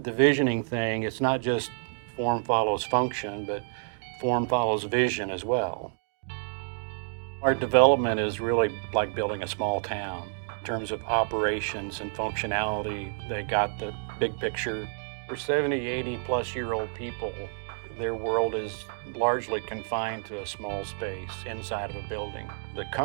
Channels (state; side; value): silent; left; digital silence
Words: the visioning thing. It's not just form follows function, but form follows vision as well. Our development is really like building a small town. In terms of operations and functionality, they got the big picture. For 70, 80 plus year old people, their world is largely confined to a small space inside of a building. The